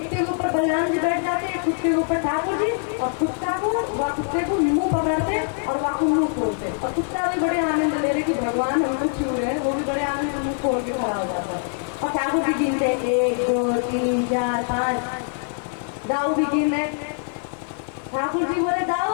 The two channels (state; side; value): silent; right; 63 dB below the other